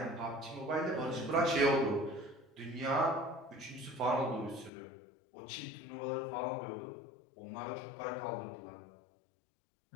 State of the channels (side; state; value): right; drops out; at 4.7 s